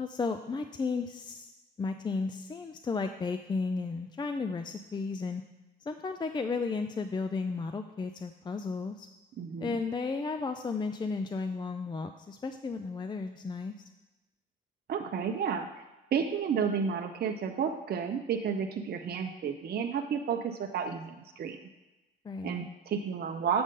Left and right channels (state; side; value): normal; both; correlation 0.45